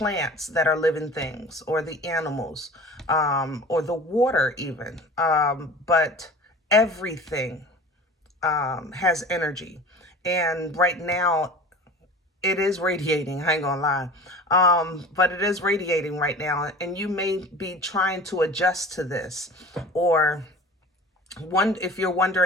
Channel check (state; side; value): normal; both; correlation 0.40